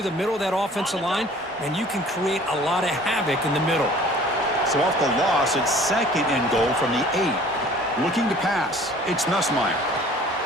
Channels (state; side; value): normal; both; correlation 0.50